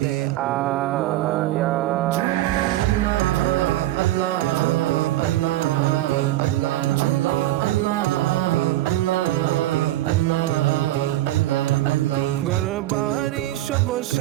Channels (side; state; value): left; quieter; 15.4 dB